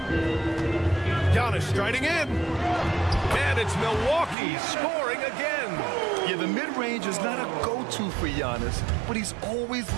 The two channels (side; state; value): left; drops out; at 4.4 s